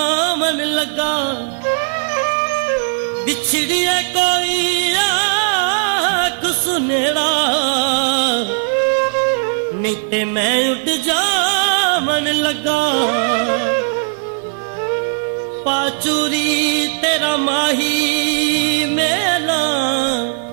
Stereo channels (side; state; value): left; silent; digital silence